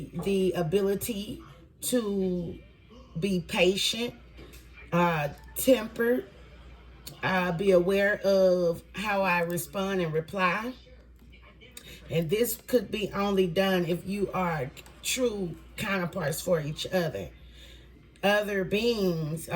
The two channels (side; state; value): both; identical; correlation 1.00